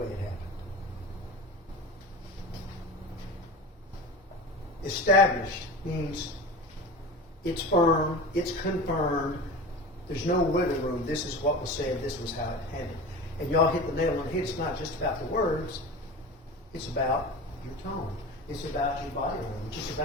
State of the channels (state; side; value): normal; both; correlation 0.31